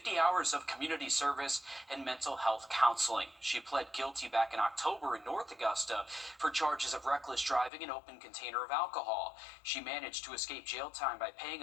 hours of community service, and mental health counseling. She pled guilty back in October in North Augusta for charges of reckless driving and open container of alcohol. She managed to escape jail time by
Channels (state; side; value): drops out; right; at 7.7 s